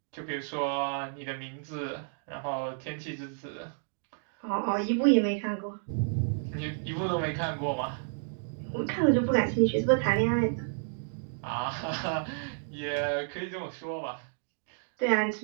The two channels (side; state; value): left; silent; digital silence